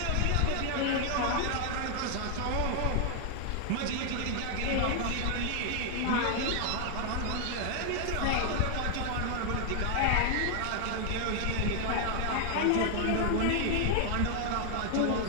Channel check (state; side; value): different; both; correlation 0.00